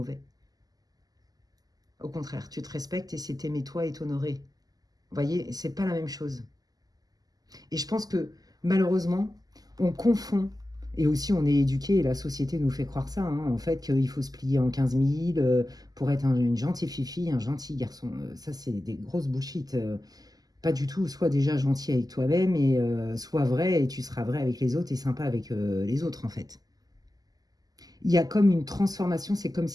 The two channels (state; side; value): late; left; 0.18 ms